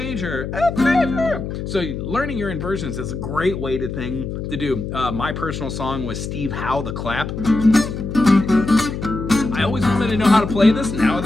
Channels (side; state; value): left; noise; hum, 6 dB below the sound